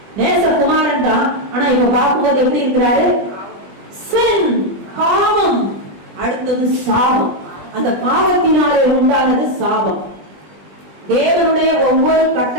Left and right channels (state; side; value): late; left; 20 ms